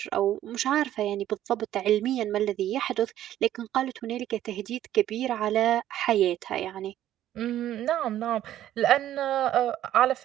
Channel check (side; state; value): left; quieter; 12.4 dB